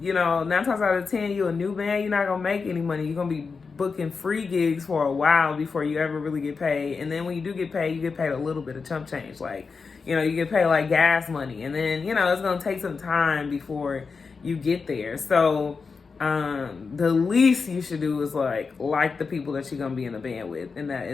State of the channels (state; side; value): quieter; right; 4.9 dB